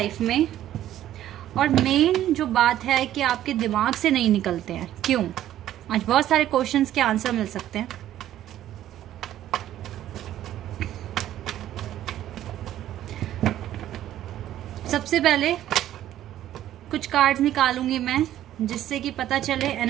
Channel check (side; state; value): left; quieter; 12.5 dB